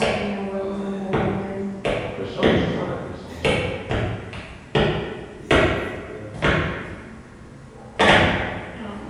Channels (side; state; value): both; identical; correlation 1.00